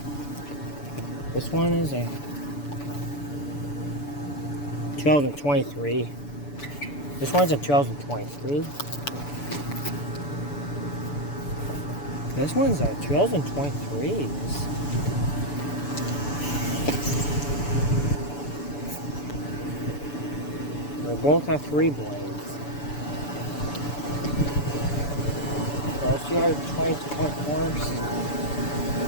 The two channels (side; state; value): right; late; 6.9 ms